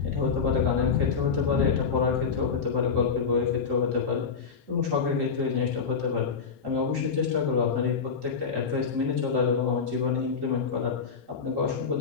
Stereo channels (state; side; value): quieter; right; 5.7 dB